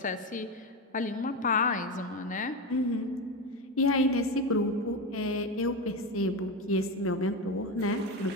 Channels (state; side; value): normal; both; correlation 0.16